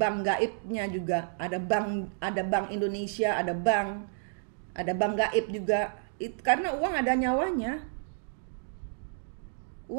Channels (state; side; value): silent; left; digital silence